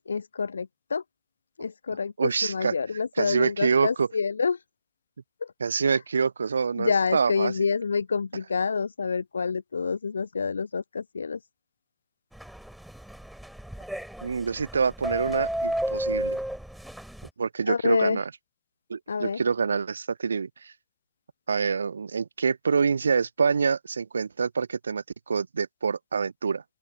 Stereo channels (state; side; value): inverted; both; correlation -0.76